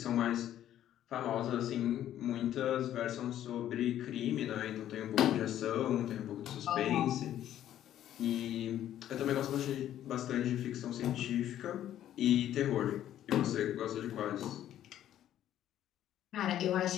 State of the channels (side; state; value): right; quieter; 11.7 dB